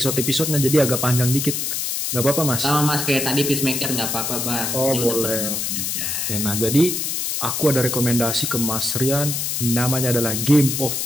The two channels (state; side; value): noise; left; hiss, 1 dB below the sound